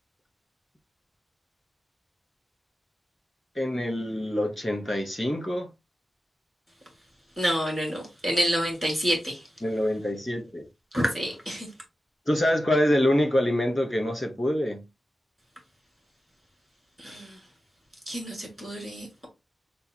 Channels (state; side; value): normal; both; correlation 0.92